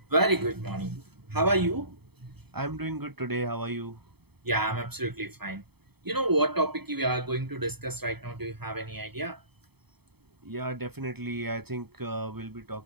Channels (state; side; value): late; left; 0.97 ms